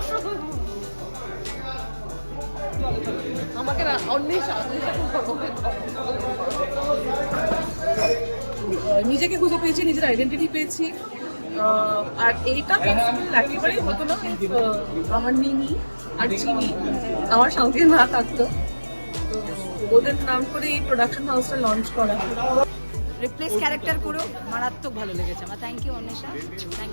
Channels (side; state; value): both; inverted; correlation -1.00